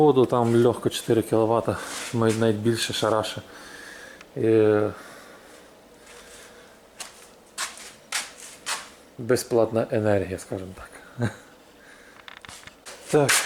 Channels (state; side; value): identical; both; correlation 1.00